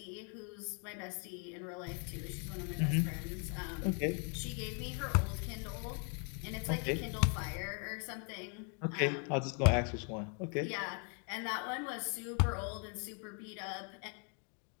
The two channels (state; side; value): quieter; right; 39.1 dB